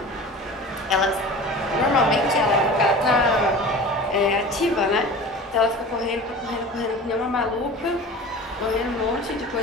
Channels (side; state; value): both; normal; correlation 0.37